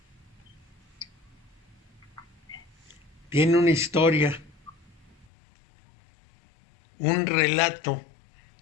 Tiene una historia. Un relato.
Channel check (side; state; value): right; drops out; at 5.2 s